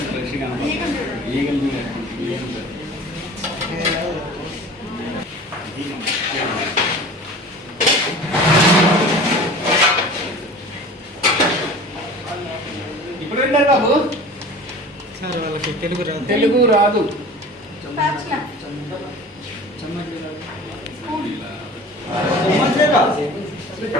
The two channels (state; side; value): normal; both; correlation 0.40